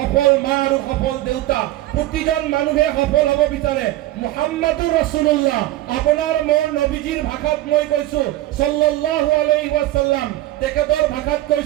মা আৰু সফল দেউতা। প্ৰতিজন মানুহে সফল হ'ব বিচাৰে। মুহাম্মাদুৰ ৰাছুলুল্লাহ, আপোনাৰ মোৰ নবীজীৰ ভাষাত মই কৈছোঁ, সাল্লাল্লাহু আলাইহি ওয়াসাল্লাম, তেখেতৰ ভাষাত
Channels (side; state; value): left; quieter; 15.8 dB